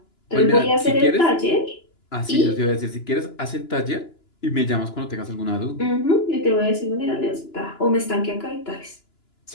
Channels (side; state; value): right; late; 2.9 ms